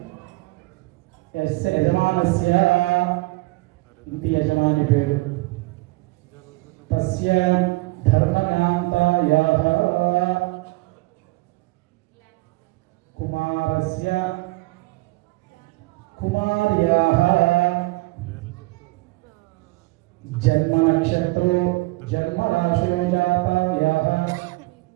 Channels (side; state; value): left; quieter; 22.8 dB